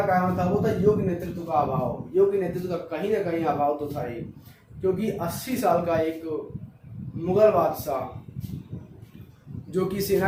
कारण था वो था योग्य नेतृत्व का अभाव। योग्य नेतृत्व का कहीं ना कहीं अभाव तो था ही, क्योंकि 80 साल का एक मुगल बादशाह जो कि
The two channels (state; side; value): identical; both; correlation 1.00